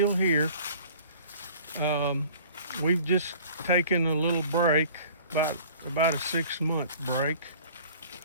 here. We've just taken a little break, about a 6-month break,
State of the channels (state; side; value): inverted; both; correlation -0.48